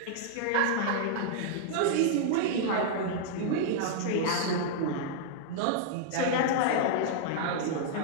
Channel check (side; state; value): both; different; correlation -0.01